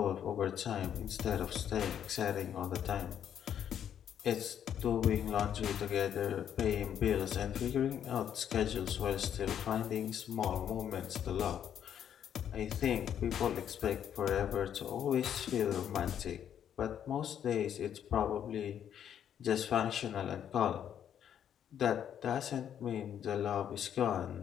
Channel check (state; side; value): quieter; right; 9.4 dB